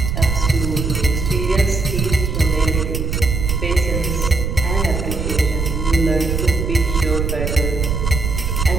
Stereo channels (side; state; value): right; noise; rumble, 2 dB below the sound